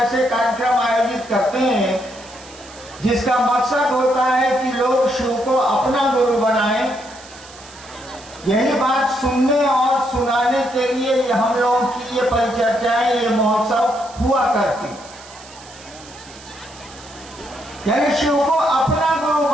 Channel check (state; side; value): noise; right; hiss, 20 dB below the sound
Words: कार्यक्रम आयोजित करते हैं जिसका मकसद होता है कि लोग शिव को अपना गुरु बनाएं। यही बात सुनने और सुनाने के लिए हम लोगों की ये परिचर्चाएं, ये महोत्सव हुआ करती। यानी शिव को अपना गुरु